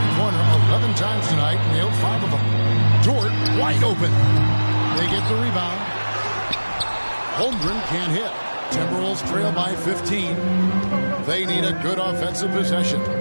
11 times tonight and nailed 5 of them. Dort wide open. They get the rebound. Holmgren can't hit. Timberwolves trail by 15. They need a good offensive possession.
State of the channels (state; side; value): inverted; both; correlation -1.00